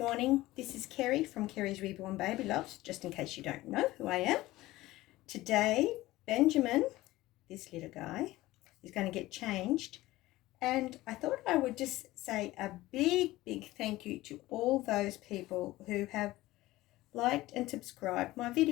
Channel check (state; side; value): quieter; right; 17.7 dB